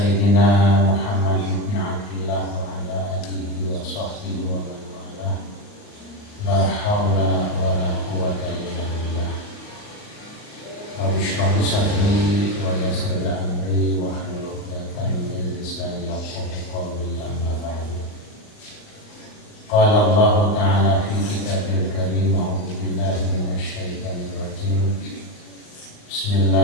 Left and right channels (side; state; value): right; late; 38 ms